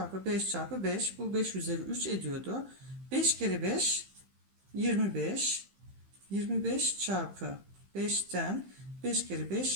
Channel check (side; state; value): left; late; 15 ms